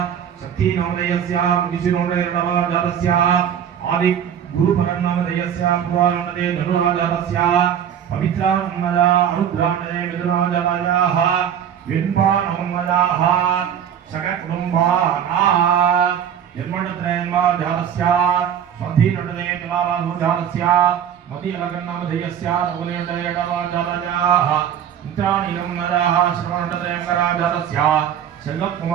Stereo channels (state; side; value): quieter; left; 9.0 dB